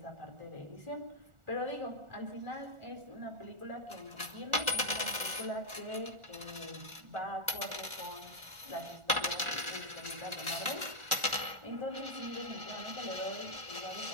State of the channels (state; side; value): late; left; 1.4 ms